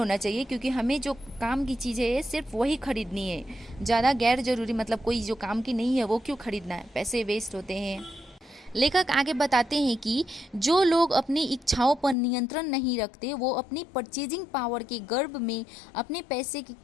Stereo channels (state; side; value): drops out; right; at 12.2 s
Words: चाहिए, क्योंकि हमें जो काम की चीज़ है सिर्फ वही खरीदनी है। ज़्यादा गैर ज़रूरी मतलब कोई जो काम की नहीं है वो क्यों खरीदना है, पैसे वेस्ट होते हैं। लेखक आगे बताते हैं कि जो लोग अपनी इच्छाओं पर नियंत्रण नहीं रखते वो अपनी परचेजिंग पावर के गर्भ में अपने पैसे